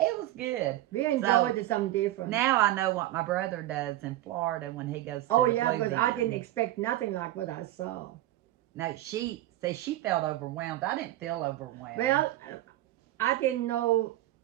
was good. We enjoyed it, something different. Now I know what my brother does in Florida when he goes to Oh, the yeah, Blue because Bin. I didn't expect nothing like what I saw. No, she says she felt overwhelmed. I didn't feel overwhelmed. Well, I didn't know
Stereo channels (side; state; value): left; quieter; 15.0 dB